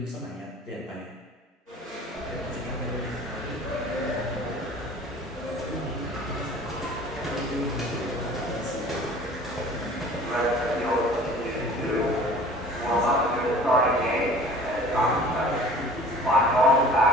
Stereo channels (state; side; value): normal; both; correlation 0.46